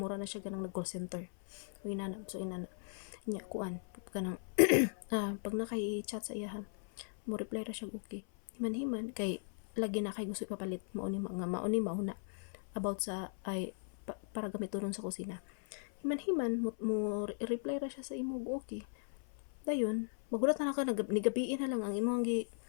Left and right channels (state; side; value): silent; right; 53 dB below the other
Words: na siya ganang nag call center inana nya kuan kanang pag nakay-chat sa iya mo reply ra siya okay himan-himan kay lagi na kay gusto ipapalit mauni mauna about sa para gamiton sa kusina himan-himan reply ra siya sa imo okay dayon magulat na ka nigabiin na lang ang imong gi